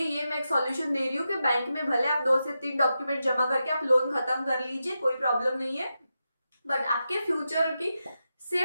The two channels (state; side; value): inverted; both; correlation -0.89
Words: ये मैं एक सॉल्यूशन दे रही हूँ कि बैंक में भले आप 2 से 3 डॉक्यूमेंट जमा करके आप लोन खत्म कर लीजिए, कोई प्रॉब्लम नहीं है, बट आपके फ्यूचर की